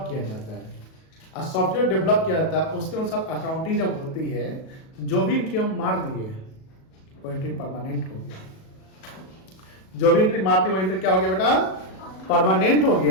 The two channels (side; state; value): right; late; 37 ms